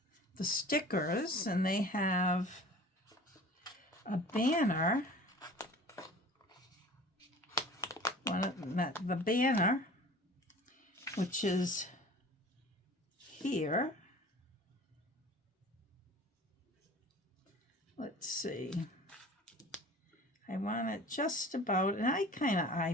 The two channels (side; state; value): both; normal; correlation 0.43